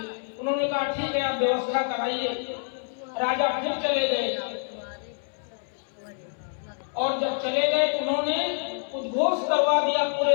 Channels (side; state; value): right; silent; 60 dB below the other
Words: उन्होंने कहा ठीक है, आप व्यवस्था कराइए। राजा फिर चले गए और जब चले गए तो उन्होंने उद्घोष करवा दिया पूरे